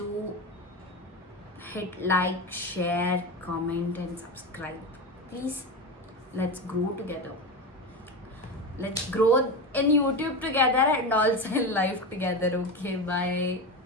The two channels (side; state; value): both; normal; correlation 0.20